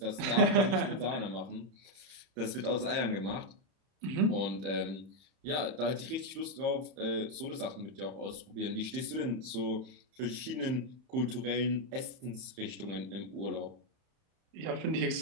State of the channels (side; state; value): left; late; 31 ms